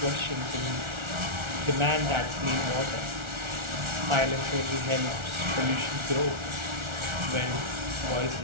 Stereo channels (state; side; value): late; left; 1.4 ms